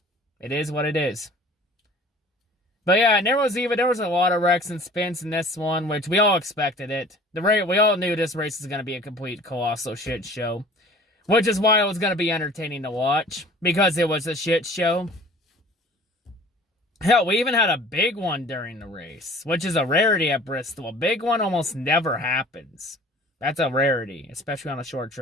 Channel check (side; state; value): both; normal; correlation 0.47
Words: it is what it is. But yeah, and there was a lot of wrecks and spins in this one, which we all expected it. We all knew this race was going to be a complete colossal shit show. Which is why it was going to be entertaining to watch. Because it was a shit show. Hell, we even had a big one during the race. Which is a rarity at Bristol. A big one almost never happens. That's a rarity, especially on a short